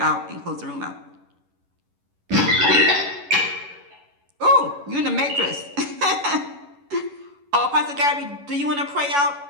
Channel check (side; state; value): left; late; 11 ms